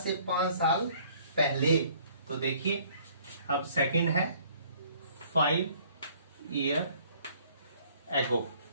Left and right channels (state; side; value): inverted; both; correlation -0.58